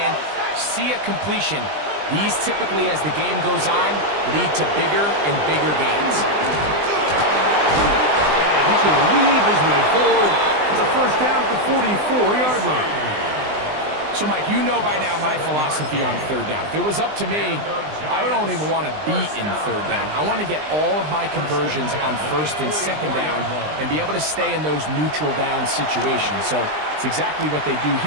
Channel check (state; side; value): late; left; 20 ms